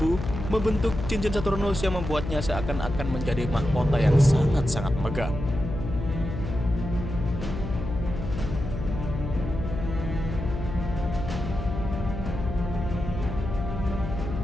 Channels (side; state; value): left; noise; hum, 6 dB below the sound